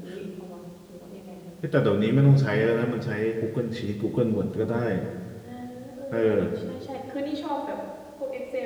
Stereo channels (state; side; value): identical; both; correlation 1.00